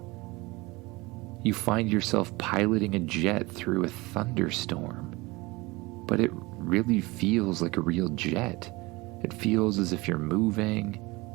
You find yourself piloting a jet through a thunderstorm, but it really feels like a real jet. It feels as if you're moving.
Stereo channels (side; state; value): left; quieter; 22.9 dB